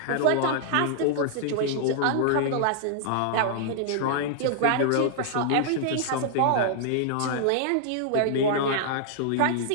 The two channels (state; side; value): different; both; correlation -0.01